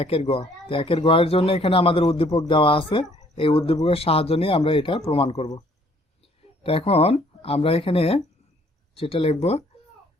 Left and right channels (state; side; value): normal; both; correlation 0.61